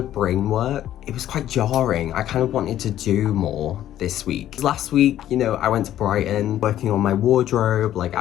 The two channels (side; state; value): right; quieter; 12.2 dB